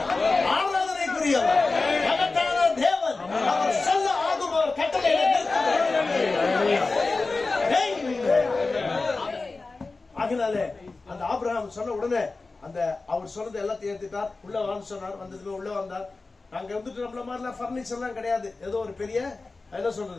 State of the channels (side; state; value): right; quieter; 3.7 dB